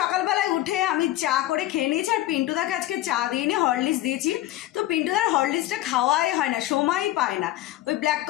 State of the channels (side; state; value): right; quieter; 15.2 dB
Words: সকালবেলায় উঠে আমি চা করে খেয়ে নিয়েছি। আর পিন্টুদাকে আজকে চা দিয়ে নিয়ে হরলিক্স দিয়েছি। তো পিন্টুদার হরলিক্সটা খাওয়াই হয় না, সময়ই পায় না। ওই ব্ল্যাক